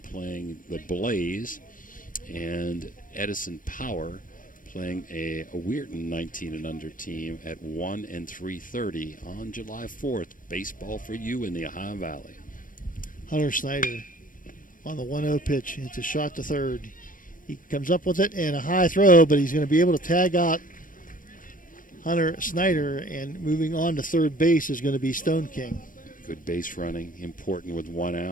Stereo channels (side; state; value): right; late; 0.39 ms